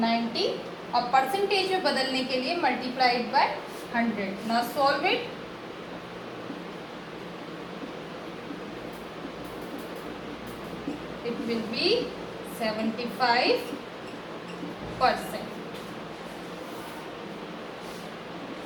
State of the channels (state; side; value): identical; both; correlation 1.00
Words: 90 और percentage में बदलने के लिए multiplied by 100. Now solve it. It will be 75%.